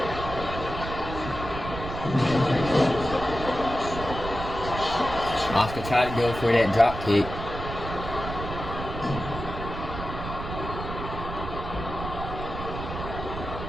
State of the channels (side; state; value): right; noise; rumble, 8 dB below the sound